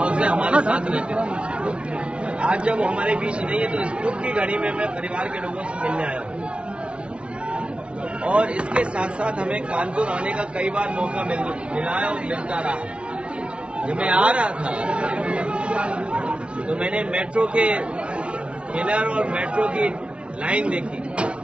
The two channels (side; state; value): left; late; 0.059 ms